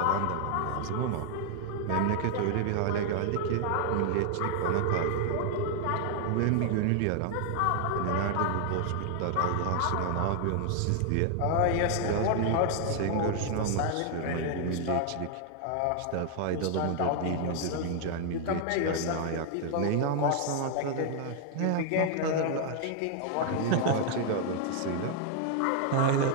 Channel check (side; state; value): both; different; correlation 0.00